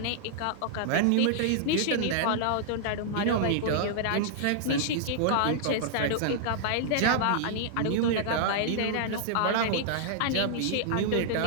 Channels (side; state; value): both; different; correlation -0.01